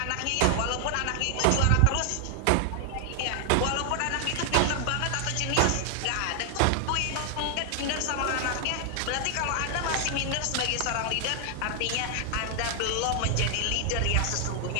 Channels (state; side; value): different; both; correlation 0.00